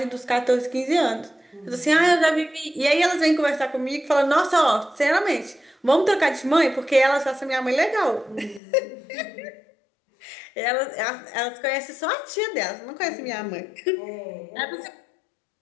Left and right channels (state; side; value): drops out; right; at 8.6 s